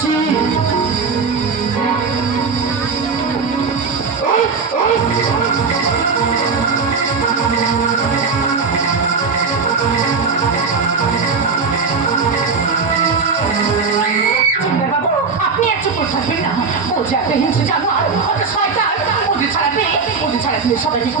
আপনি এক চুপ থাকবেন না। ও যে একটা হিংসে জানোয়ার, ওটা শয়তান। ওদের ছাড়াতে সবাইকে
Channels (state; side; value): quieter; left; 4.9 dB